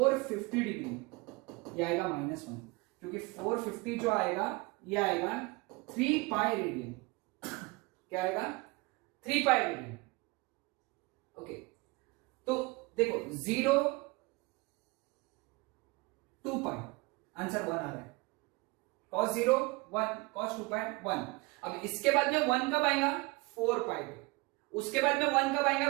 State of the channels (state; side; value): quieter; left; 25.0 dB